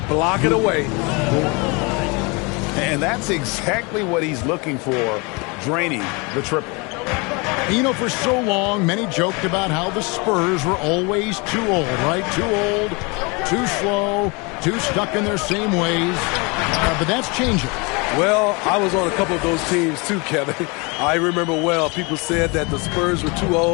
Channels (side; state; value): right; quieter; 28.9 dB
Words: block it away. And that's exactly what he's looking for, draining the triple. You know, for so long, many joked about how the Spurs were always too old, right? Too old, too slow, too stuck in their same ways. But that's changing. Well, I was on a couple of those teams too, Kevin. I remember well, people said that the Spurs were too